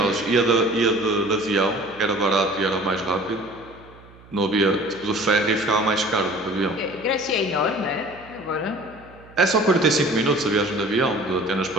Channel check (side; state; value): right; noise; hum, 23 dB below the sound